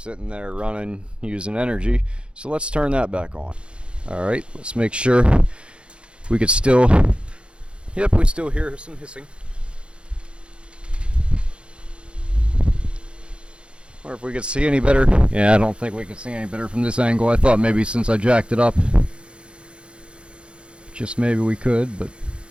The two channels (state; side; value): late; left; 0.056 ms